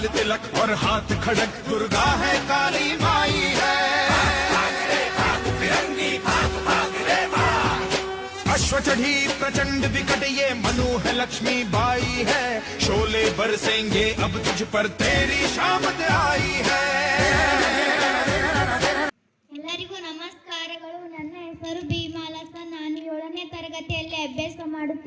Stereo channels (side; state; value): both; identical; correlation 1.00